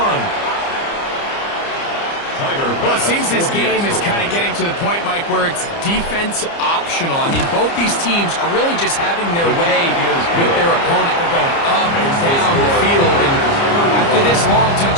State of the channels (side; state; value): right; late; 30 ms